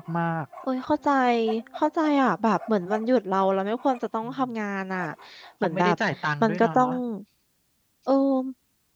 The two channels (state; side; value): identical; both; correlation 1.00